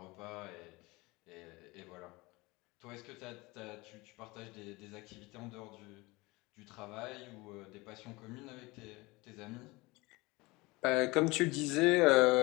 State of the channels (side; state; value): right; quieter; 23.0 dB